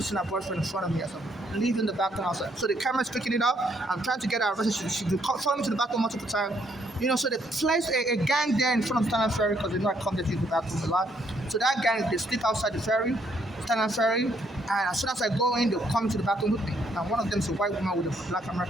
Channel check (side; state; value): both; normal; correlation 0.70